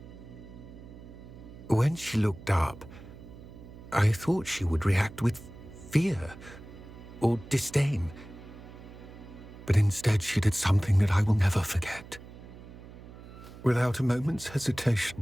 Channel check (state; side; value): noise; right; hum, 16 dB below the sound